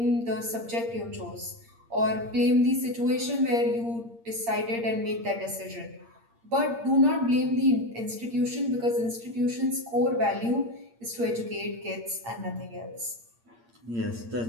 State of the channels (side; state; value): left; late; 8.6 ms